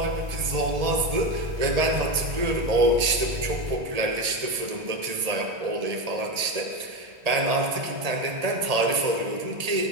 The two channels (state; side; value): late; left; 1.7 ms